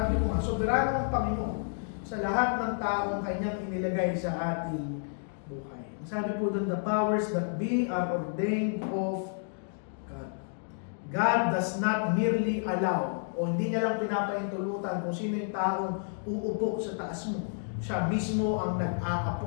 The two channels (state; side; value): silent; right; digital silence